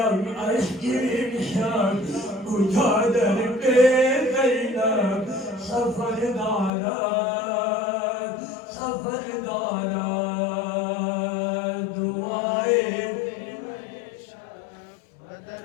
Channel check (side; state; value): right; drops out; at 6.7 s